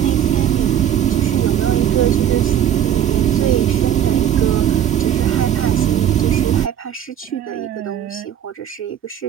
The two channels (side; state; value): left; quieter; 10.0 dB